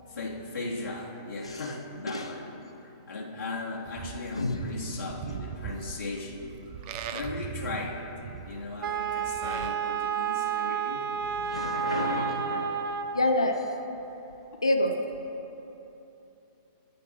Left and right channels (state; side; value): inverted; both; correlation -0.34